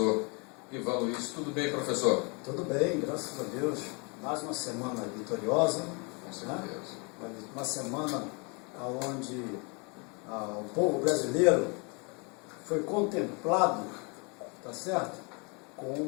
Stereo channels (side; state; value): right; quieter; 32.8 dB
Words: Ivan Luiz. Tudo bem, professor? Tudo bem, graças a Deus. Mais uma semana vitoriosa. Com certeza. Né? Uma semana onde o povo brasileiro foi contemplado, tá certo? Com